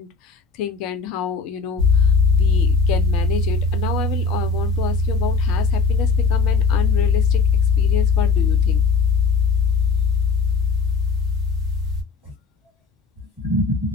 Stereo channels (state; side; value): quieter; right; 4.7 dB